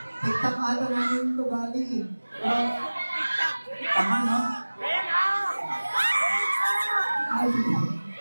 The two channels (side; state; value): both; inverted; correlation -1.00